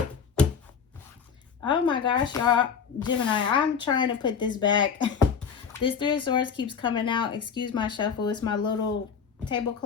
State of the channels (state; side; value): quieter; right; 6.6 dB